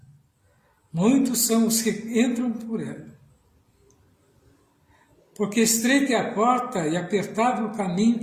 Muitos são os que entram por ela. Porque estreita é a porta e apertado o caminho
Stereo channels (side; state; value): both; identical; correlation 1.00